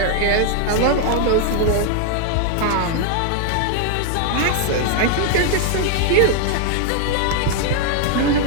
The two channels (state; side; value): different; both; correlation 0.00